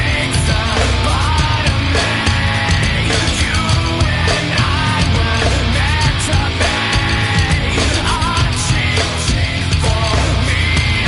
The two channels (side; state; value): both; identical; correlation 1.00